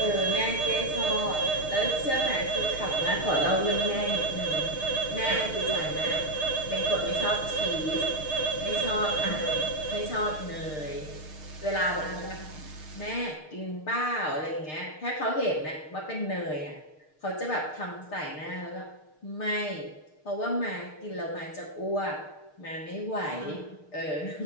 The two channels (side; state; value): right; late; 6.6 ms